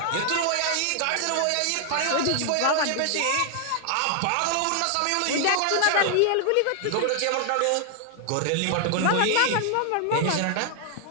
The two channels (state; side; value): different; both; correlation 0.00